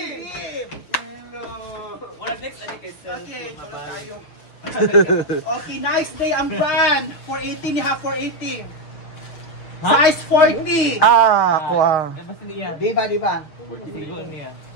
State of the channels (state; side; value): late; right; 6.4 ms